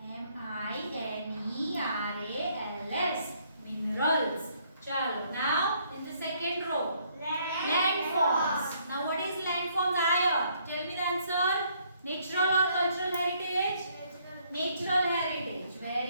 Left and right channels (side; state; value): both; inverted; correlation -0.67